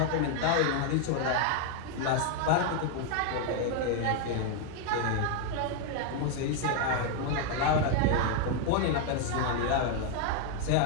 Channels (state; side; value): different; both; correlation 0.00